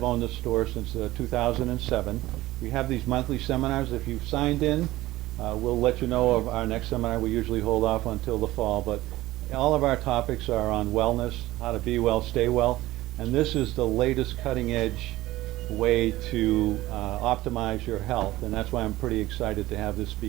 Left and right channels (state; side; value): quieter; left; 17.1 dB